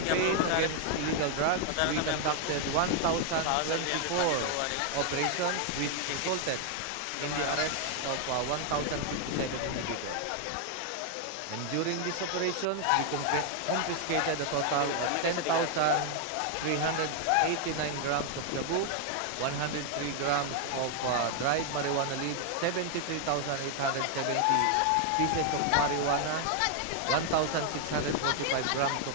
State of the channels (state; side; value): different; both; correlation 0.00